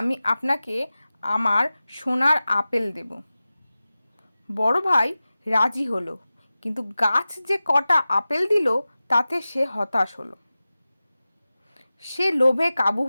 আপনাকে আমার সোনার আপেল দেব। বড় ভাই রাজি হলো, কিন্তু গাছ যে কটা আপেল দিল তাতে সে হতাশ হলো। সে লোভে কাবু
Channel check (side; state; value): both; inverted; correlation -0.96